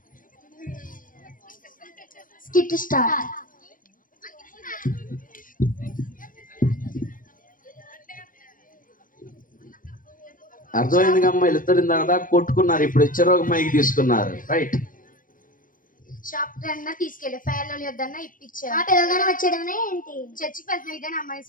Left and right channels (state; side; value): late; right; 0.40 ms